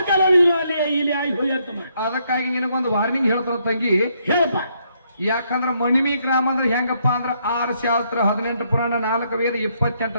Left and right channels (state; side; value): inverted; both; correlation -0.74